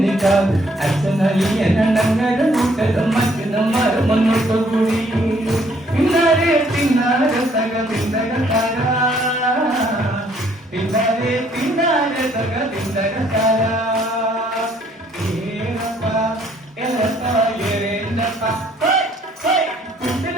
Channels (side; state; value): both; normal; correlation 0.64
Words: അച്ഛനലിയനങ്ങര കൂട്ടരും മറ്റു മുന്നോട്ട് കൂടി പിന്നാരെ പിന്നാരെ തക പിന്തക താര പിന്നാരെ പിന്നാരെ തക പിന്തക താര